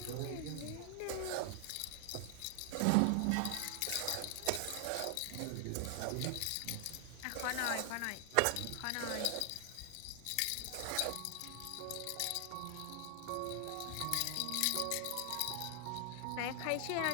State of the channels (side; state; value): both; different; correlation 0.00